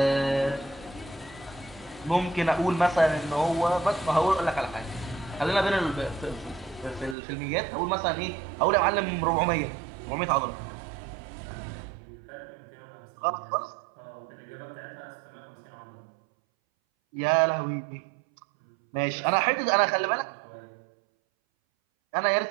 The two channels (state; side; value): drops out; left; at 7.2 s